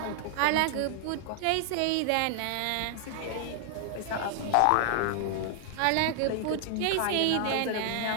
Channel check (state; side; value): different; both; correlation 0.00